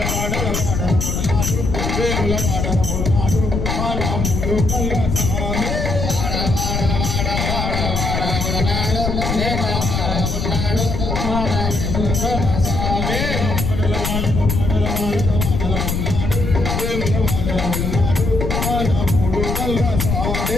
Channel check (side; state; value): left; noise; rumble, 1 dB below the sound